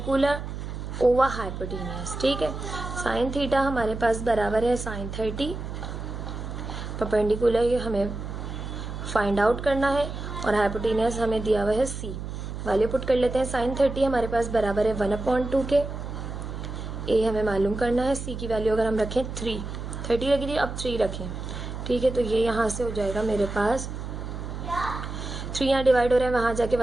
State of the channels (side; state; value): right; noise; hum, 7 dB below the sound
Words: over hypotenuse. ठीक है, साइन थीटा हमारे पास बराबर है साइन 30, परपेंडिकुलर हमें फाइंड आउट करना है और हाइपोटेनियस हमें दिया हुआ है सी। वैल्यू पुट कर लेते हैं। साइन 30 हमारे पास बराबर है 1/2 के, ए हमें मालूम करना है, सी की वैल्यू अगर हम रखें 30 लगी थी, अब 3 रखें। ठीक है, तो ये यहाँ से हो जाएगा मेरे पास 3 यहाँ डिवाइड हो रहा है, वहाँ जाके